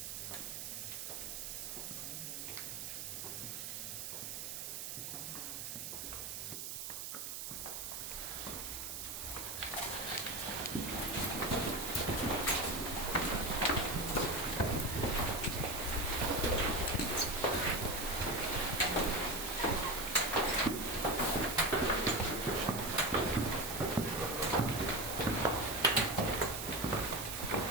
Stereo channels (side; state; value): right; noise; hiss, 6 dB below the sound